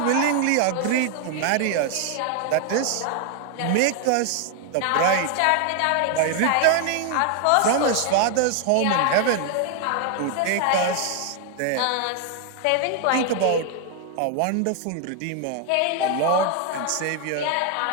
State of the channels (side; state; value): both; different; correlation 0.00